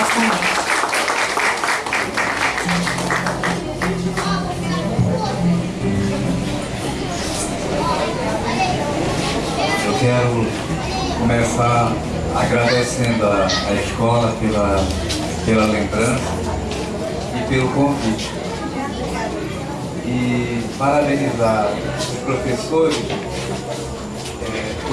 convite. Eu quero começar agradecendo a escola pela lembrança e pelo convite. E parabenizar os professores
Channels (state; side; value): identical; both; correlation 1.00